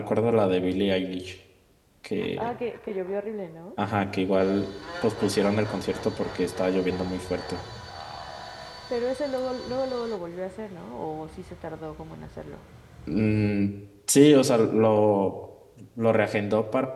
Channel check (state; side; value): identical; both; correlation 1.00